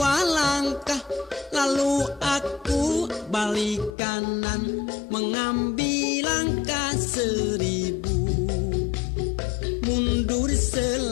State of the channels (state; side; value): drops out; right; at 4.0 s